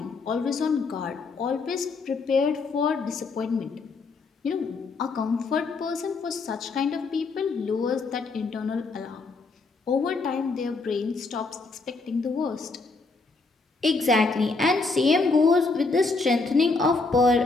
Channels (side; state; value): right; quieter; 3.9 dB